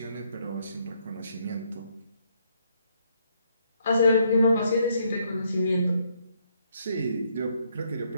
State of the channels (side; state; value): both; inverted; correlation -0.72